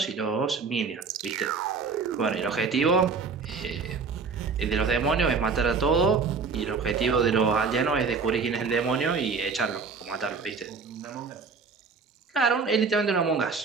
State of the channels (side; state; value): left; quieter; 5.0 dB